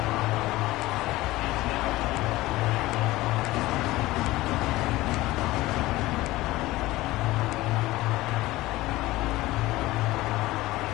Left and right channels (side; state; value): right; quieter; 18.3 dB